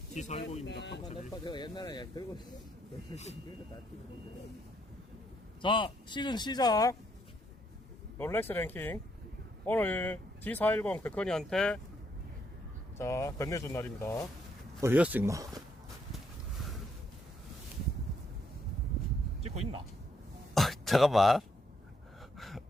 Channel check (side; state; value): both; normal; correlation 0.74